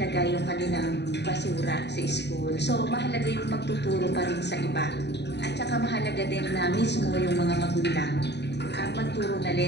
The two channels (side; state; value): right; late; 0.50 ms